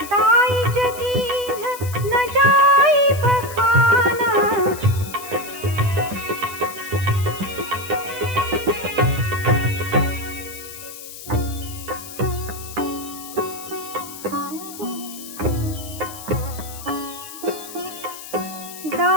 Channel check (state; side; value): noise; left; hiss, 13 dB below the sound